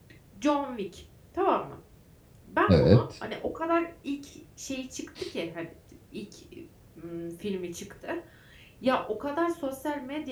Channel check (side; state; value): both; identical; correlation 1.00